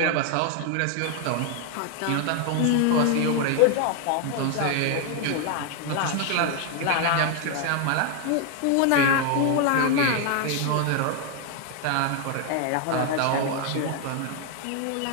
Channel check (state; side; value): different; both; correlation 0.00